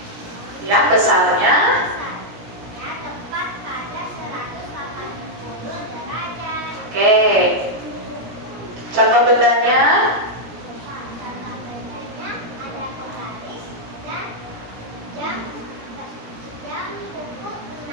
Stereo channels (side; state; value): left; late; 17 ms